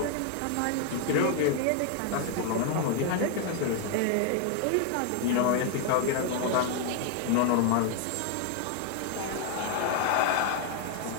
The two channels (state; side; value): different; both; correlation 0.00